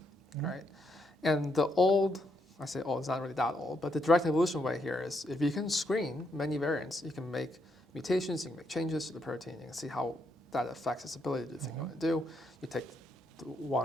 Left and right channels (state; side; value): normal; both; correlation 0.77